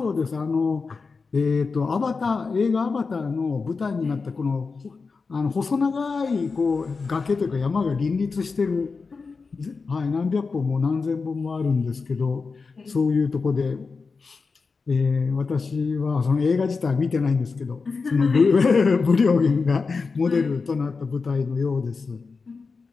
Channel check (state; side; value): quieter; right; 4.6 dB